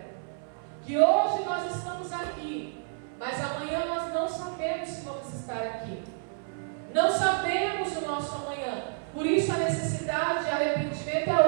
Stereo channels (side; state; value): left; silent; 58 dB below the other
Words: Que hoje nós estamos aqui, mas amanhã nós não sabemos se vamos estar aqui. Não sabemos o nosso amanhã. Por isso a necessidade de arrependimento é